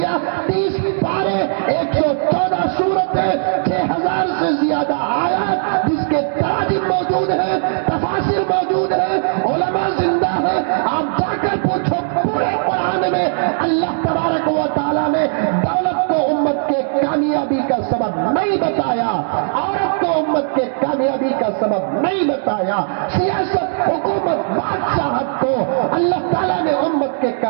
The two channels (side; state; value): left; silent; digital silence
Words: 30 پارے، 114 سورتیں، 6000 سے زیادہ آیات جس کے تراجم موجود ہیں، تفاسیر موجود ہیں، علماء زندہ ہیں. آپ جا کر پوچھو پورے قرآن میں اللہ تبارک و تعالیٰ نے دولت کو امت کے کامیابی کا سبب نہیں بتایا، عورت کو امت کے کامیابی کا سبب نہیں بتایا، سیاست، حکومت، بادشاہت کو اللہ تعالیٰ نے امت کے